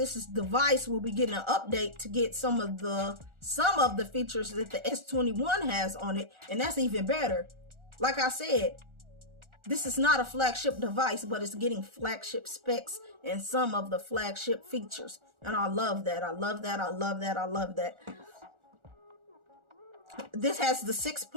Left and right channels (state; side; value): late; left; 1.4 ms